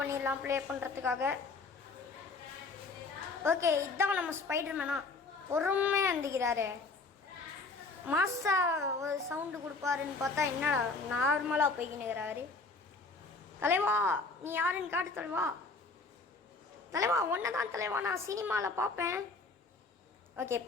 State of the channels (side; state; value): right; quieter; 3.8 dB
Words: ப்ளே பண்ணுறதுக்காக. ஓகே, இதுதான் நம்ம ஸ்பைடர்மேனா பொறுமையாக இருந்துக்கிறாரு. மாசா ஒரு சவுண்டு கொடுப்பாருன்னு பார்த்தா என்னடா நார்மலாக போய்க்கினுக்கிறாரு. தலைவா நீ யாருன்னு காட்டு தலைவா. தலைவா ஒன்றை தான் தலைவா, நான் சினிமாவில் பார்ப்பேன். ஓகே